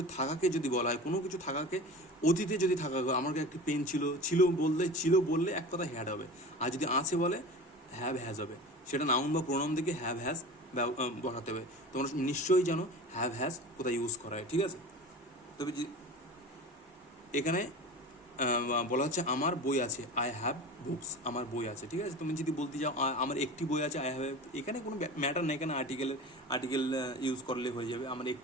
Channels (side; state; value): both; normal; correlation 0.34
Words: থাকাকে যদি বলা হয়, কোনো কিছু থাকাকে অতীতে যদি থাকা, আমার একটি পেন ছিল বললে এক কথা হ্যাড হবে। আর যদি আছে বলে, হ্যাভ হ্যাজ হবে। সেটা নাউন বা প্রোনাউন থেকে হ্যাভ হ্যাজ বসাতে হবে। তোমরা নিশ্চয়ই জানো হ্যাভ হ্যাজ কোথায় ইউজ করা হয়। ঠিক আছে, তবে এখানে বলা হচ্ছে আমার বই আছে, আই হ্যাভ বুকস, আমার বই আছে। ঠিক আছে, তুমি যদি বলতে যাও আমার একটি বই আছে, আই হ্যাভ, এখানে কোনো ম্যাটার নেই, এখানে আর্টিকেল ইউজ করলে হয়ে যাবে। আমার